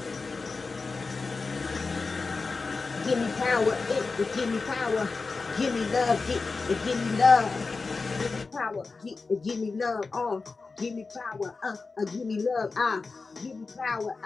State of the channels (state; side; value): quieter; right; 4.2 dB